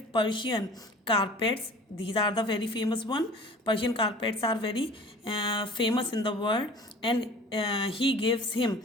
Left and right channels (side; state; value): both; normal; correlation 0.44